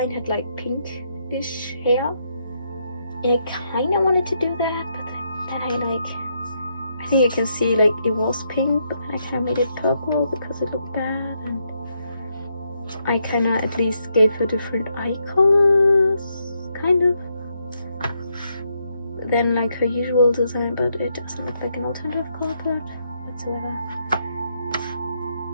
had like pinkish hair. And I kind of wanted to do that, but then I think you can see like it was pink, but then I kind of made it purple because it looked bad, and I kind of at least gave her different eye colors, kind of, than like her usual design, but it doesn't look like an alternative color palette whatsoever.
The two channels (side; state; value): both; inverted; correlation -0.78